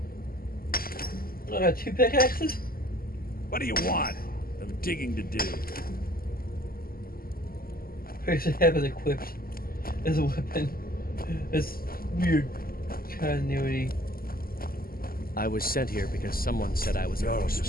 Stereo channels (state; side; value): late; right; 0.42 ms